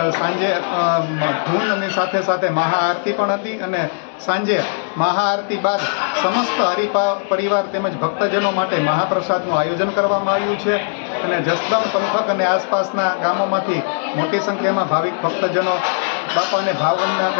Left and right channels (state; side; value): silent; right; digital silence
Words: સાંજે ધૂન અને સાથે સાથે મહાઆરતી પણ હતી અને સાંજે મહાઆરતી બાદ સમસ્ત પરિવાર તેમજ ભક્તજનો માટે મહાપ્રસાદનું આયોજન કરવામાં આવ્યું છે. અને જસદણ પંથક અને આસપાસના ગામોમાંથી મોટી સંખ્યામાં ભાવિક ભક્તજનો બાપાને ભાવવંદના